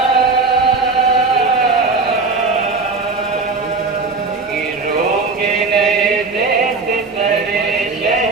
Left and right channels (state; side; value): quieter; left; 4.1 dB